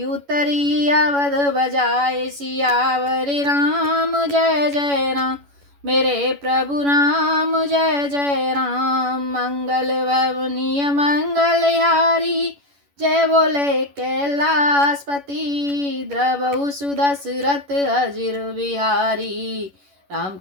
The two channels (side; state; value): left; late; 11 ms